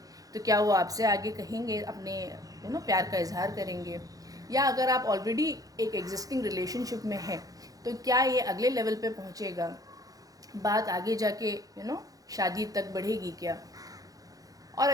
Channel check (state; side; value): late; left; 0.17 ms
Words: तो क्या वो आपसे आगे कहेंगे, अपने प्यार का इजहार करेंगे? या अगर आप ऑलरेडी एक एग्जिस्टिंग रिलेशनशिप में हैं तो क्या ये अगले लेवल पे पहुंचेगा, बात आगे जाके शादी तक बढ़ेगी क्या? और